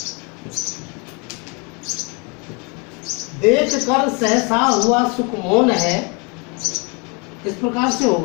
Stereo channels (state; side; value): quieter; right; 32.1 dB